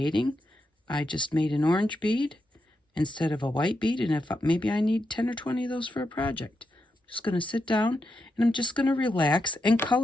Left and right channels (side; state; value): both; normal; correlation 0.85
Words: I just made an orange bead instead of a white bead, and if maybe I need 10 or 20 of those for a project. I'm just going to sit down and I'm just going to relax and